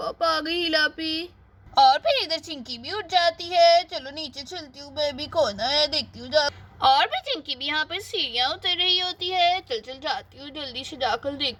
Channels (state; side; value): identical; both; correlation 1.00